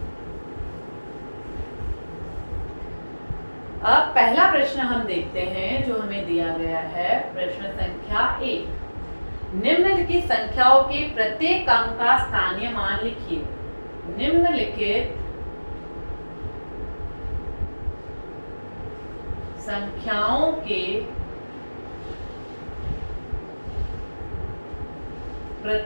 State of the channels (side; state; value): both; inverted; correlation -1.00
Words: अब पहला प्रश्न हम देखते हैं जो हमें दिया गया है, प्रश्न संख्या 1। निम्नलिखित संख्याओं के प्रत्येक अंक का स्थानीय मान लिखिए। निम्नलिखित संख्याओं के